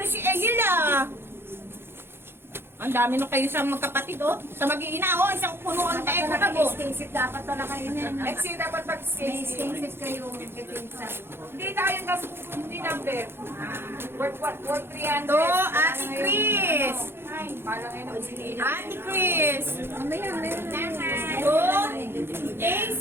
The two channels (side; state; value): left; late; 0.11 ms